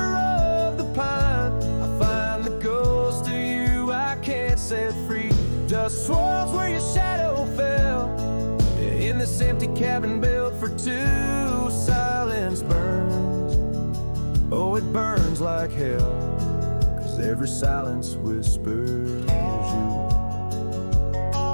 the pine, I find the ghost of you I can't set free. Dust swirls where your shadow fell, in this empty cabin built for two. Silence burns, oh it burns like hell, 'cause every silence whispers you.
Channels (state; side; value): inverted; both; correlation -1.00